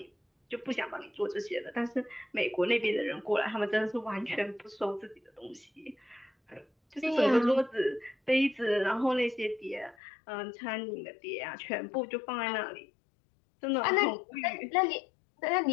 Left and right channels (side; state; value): right; drops out; at 10.0 s